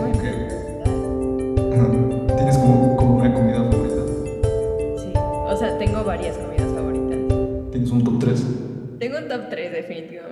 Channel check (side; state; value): both; identical; correlation 1.00